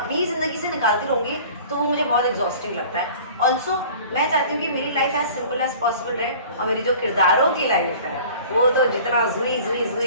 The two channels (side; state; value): both; inverted; correlation -0.45